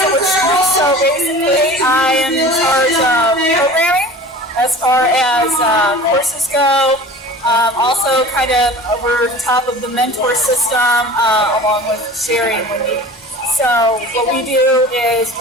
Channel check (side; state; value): both; normal; correlation 0.40